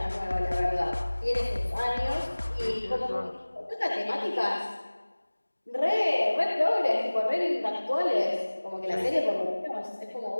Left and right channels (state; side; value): inverted; both; correlation -1.00